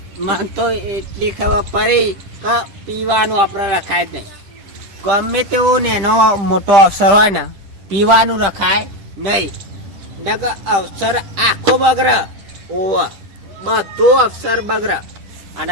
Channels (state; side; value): late; left; 10 ms